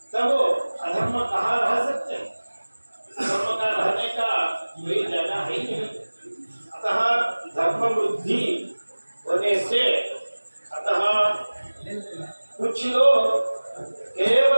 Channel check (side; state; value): both; inverted; correlation -1.00